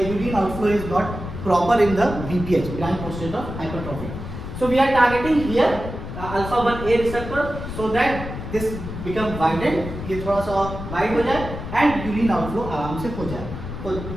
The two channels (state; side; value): noise; left; rumble, 8 dB below the sound